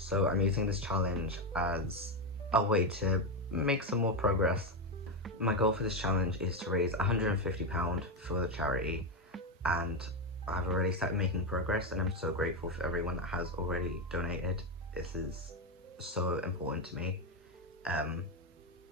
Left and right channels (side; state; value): both; normal; correlation 0.10